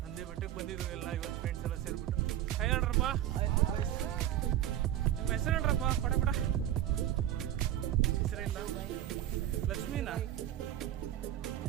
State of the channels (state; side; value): quieter; left; 12.2 dB